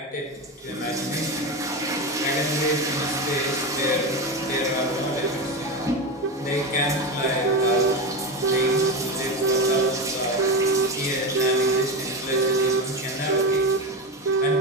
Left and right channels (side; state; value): both; normal; correlation 0.18